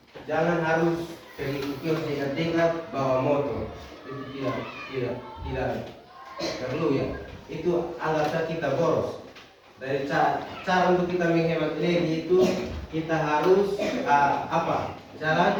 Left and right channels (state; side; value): identical; both; correlation 1.00